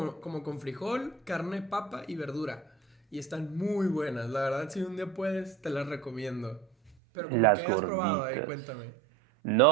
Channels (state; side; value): drops out; left; at 7.0 s